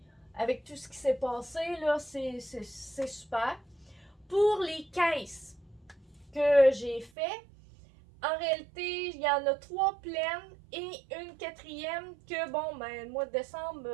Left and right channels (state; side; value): drops out; left; at 7.1 s